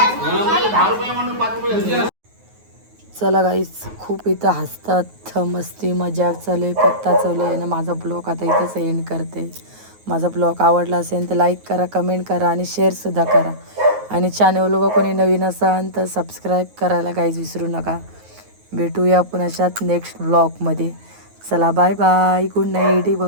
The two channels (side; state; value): left; late; 9.4 ms